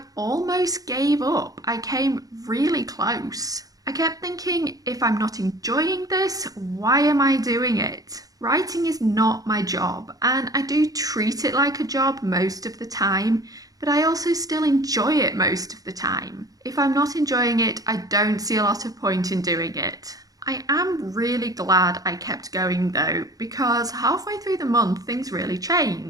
almost gave up. I came really close. I kept thinking, if I'm not enjoying this, why am I doing it? Writing is not my job, and I do treat it like a job most of the time, but I also still enjoy it most of the time. If I'm not enjoying it, I don't see a lot of point in doing it. I am really glad I kept going though, because halfway through the month things really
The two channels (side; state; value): left; late; 0.18 ms